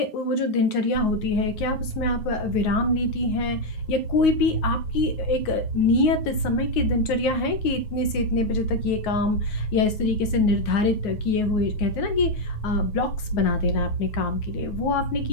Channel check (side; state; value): right; late; 9.5 ms